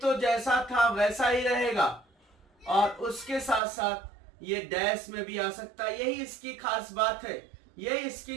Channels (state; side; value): drops out; left; at 3.6 s